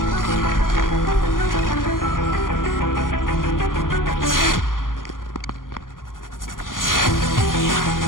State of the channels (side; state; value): right; late; 0.90 ms